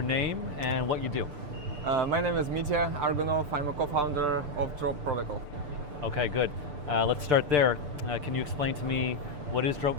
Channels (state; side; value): late; left; 6.8 ms